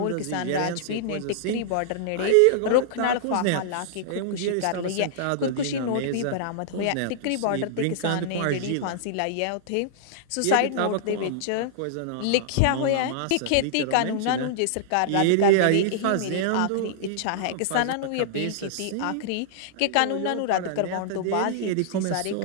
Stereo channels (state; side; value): different; both; correlation -0.01